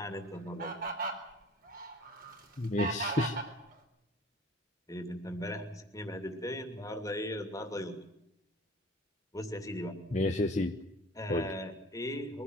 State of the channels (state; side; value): normal; both; correlation 0.45